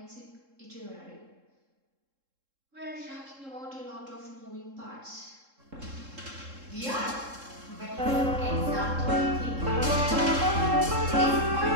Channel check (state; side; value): late; left; 3.7 ms